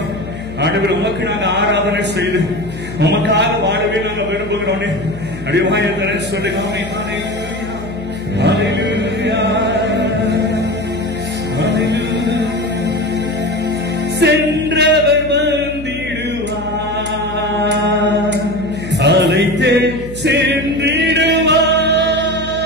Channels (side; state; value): left; noise; hum, 13 dB below the sound